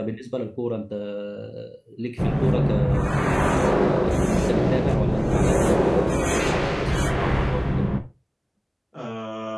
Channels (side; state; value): both; identical; correlation 1.00